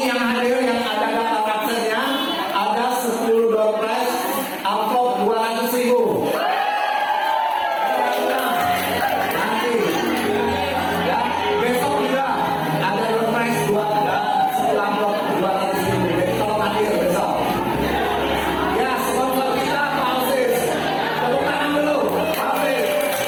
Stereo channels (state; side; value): identical; both; correlation 1.00